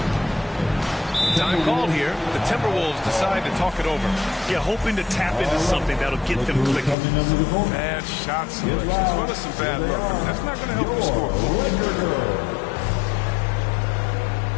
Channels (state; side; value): drops out; right; at 7.0 s